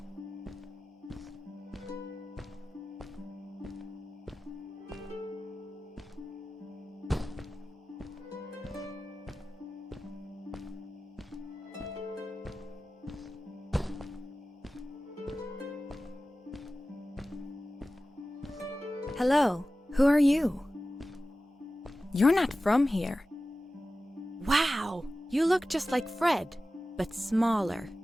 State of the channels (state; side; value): normal; both; correlation 0.95